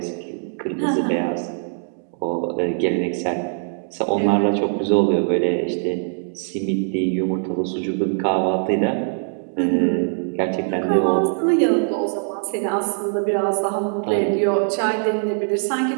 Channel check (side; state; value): left; silent; 64 dB below the other